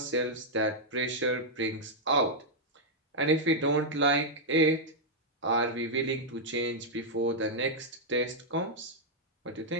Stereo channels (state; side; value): normal; both; correlation -0.04